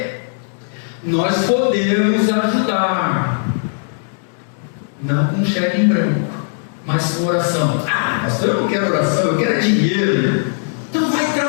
Nós podemos ajudar, não com cheque em branco, mas com oração. Pastor, eu não quero oração, eu quero dinheiro. Então vai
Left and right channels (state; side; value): silent; right; digital silence